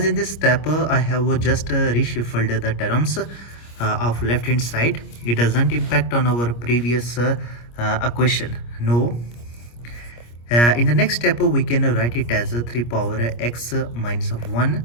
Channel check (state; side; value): late; right; 25 ms